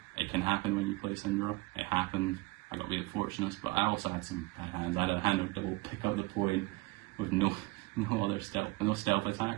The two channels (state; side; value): quieter; left; 22.5 dB